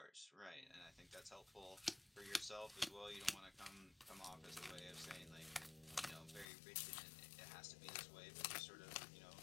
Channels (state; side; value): drops out; right; at 6.5 s